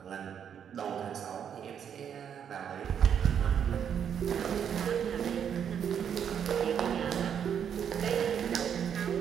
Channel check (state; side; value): quieter; left; 8.3 dB